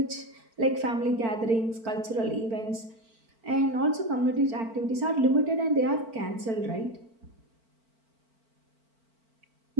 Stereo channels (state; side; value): late; left; 4.5 ms